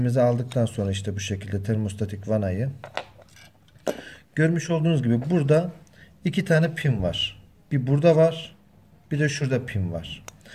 aldıktan sonra işte bu şekilde termostatik vanayı görmüş olduğunuz gibi burada iki tane pin var. Bir burada var, bir de şurada pin var.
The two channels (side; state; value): both; identical; correlation 1.00